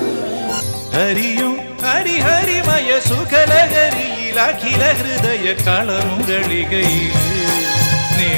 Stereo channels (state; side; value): inverted; both; correlation -1.00